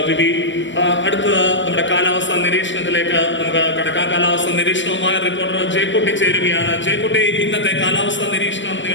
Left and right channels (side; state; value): right; late; 0.54 ms